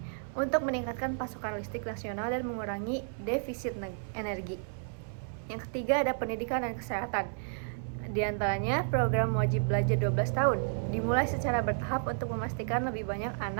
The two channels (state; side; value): silent; left; 56 dB below the other